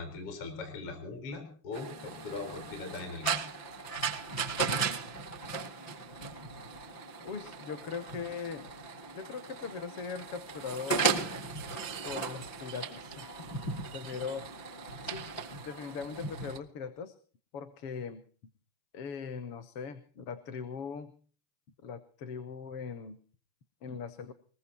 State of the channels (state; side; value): late; right; 5.9 ms